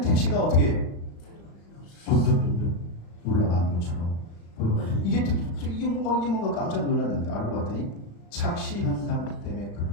어떻게 점점 올라가는 것처럼 보여가지고 이게 뭔가 깜짝 놀랐는데 알고 봤더니 착시 현상 때문에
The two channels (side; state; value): right; late; 35 ms